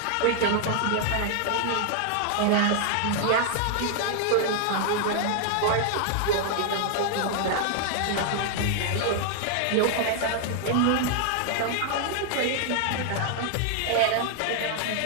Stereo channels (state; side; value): different; both; correlation 0.00